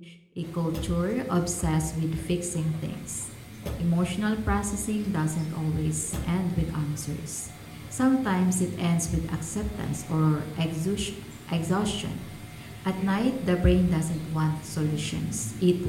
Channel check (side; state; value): both; identical; correlation 1.00